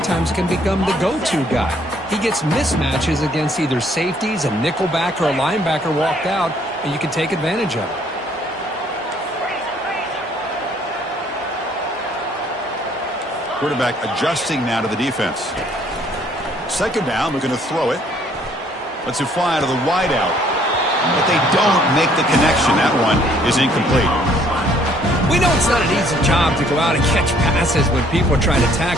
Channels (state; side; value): normal; both; correlation 0.63